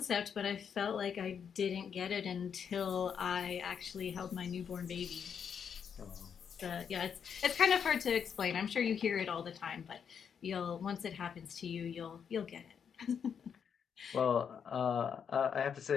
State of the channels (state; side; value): quieter; right; 7.3 dB